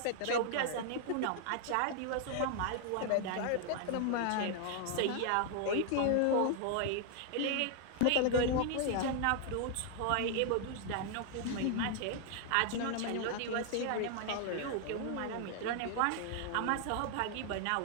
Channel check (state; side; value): different; both; correlation 0.00